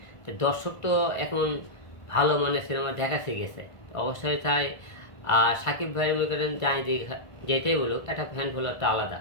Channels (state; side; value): late; right; 1.4 ms